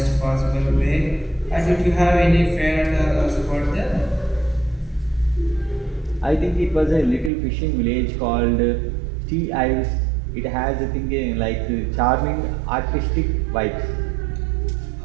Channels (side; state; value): left; drops out; at 7.3 s